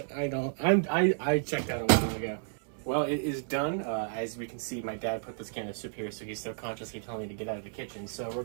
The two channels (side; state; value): left; silent; digital silence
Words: I don't. I checked out a while ago. Well, it is done. As we can see, my dad put this can of soup here, so he's subconsciously telling me to get out of the kitchen. So we're